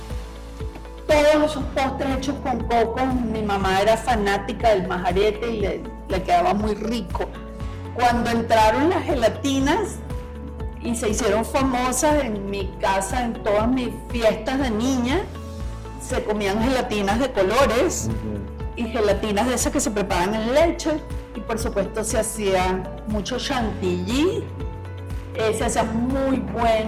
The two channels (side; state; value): both; identical; correlation 1.00